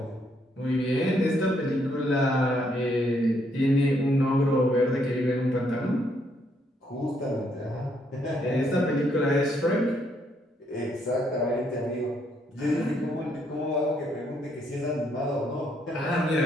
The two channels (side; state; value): both; normal; correlation 0.72